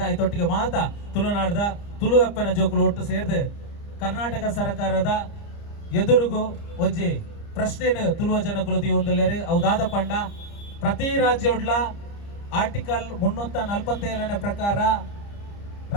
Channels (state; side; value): late; right; 30 ms